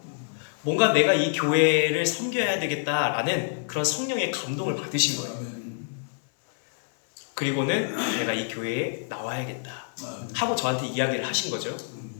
뭔가 내가 이 교회를 섬겨야 되겠다라는 그런 성령의 감동을 받으신 거예요. 그리고는 내가 이 교회에 나와야겠다 하고 저한테 이야기를 하신 거죠.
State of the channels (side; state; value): right; silent; 60 dB below the other